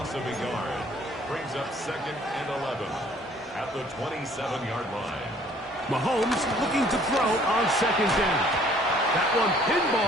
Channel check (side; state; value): both; normal; correlation 0.58